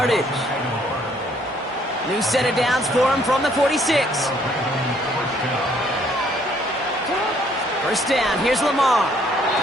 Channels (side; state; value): both; normal; correlation 0.64